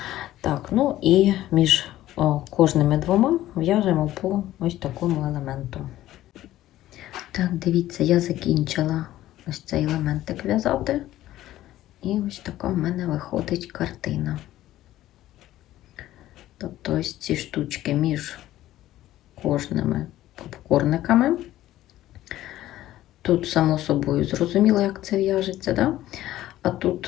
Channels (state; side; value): quieter; right; 14.4 dB